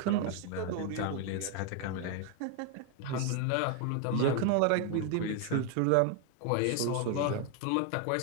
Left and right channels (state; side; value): different; both; correlation 0.01